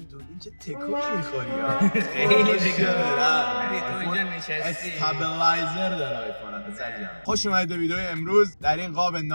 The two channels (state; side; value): inverted; both; correlation -1.00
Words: تکونی میخوری ها. خیلی دیگه تو اینجا نشستی استابلایزر داره آیفون خوش اومدید به ویدئوی امروز. در این قاب